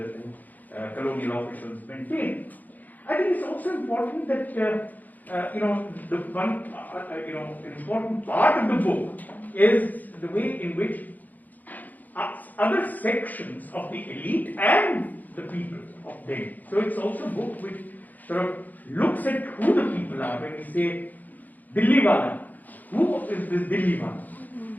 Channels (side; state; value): right; late; 0.082 ms